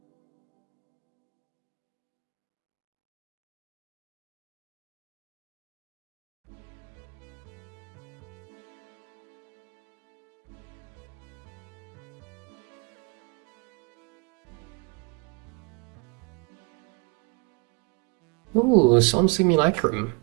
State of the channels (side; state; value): left; quieter; 31.1 dB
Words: Ooh, Some Simulacrum.